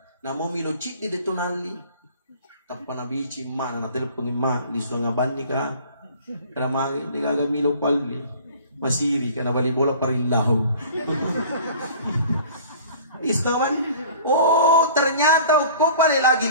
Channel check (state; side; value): inverted; both; correlation -0.46